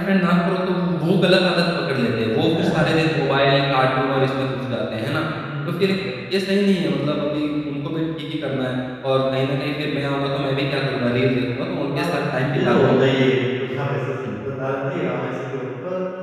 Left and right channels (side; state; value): both; identical; correlation 1.00